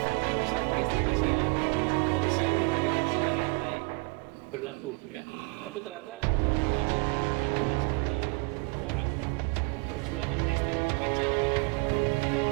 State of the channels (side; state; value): left; quieter; 30.2 dB